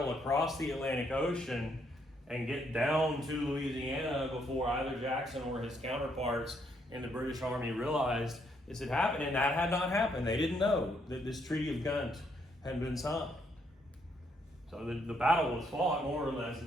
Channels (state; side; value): normal; both; correlation 0.73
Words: across the Atlantic Ocean and get down to Louisiana before either Jackson or his counterparts in the British Army realized this had happened, and that had not happened. They didn't know that this Treaty of Ghent had been signed. So the battle was fought more or less